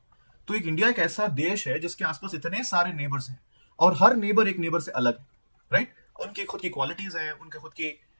तो एक इंडिया एक ऐसा देश है जिसके आसपास इतने सारे नेबर्स हैं और हर नेबर एक नेबर से अलग है, राइट? उनकी खुद की क्वालिटीज हैं, उनके खुद की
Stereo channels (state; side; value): inverted; both; correlation -1.00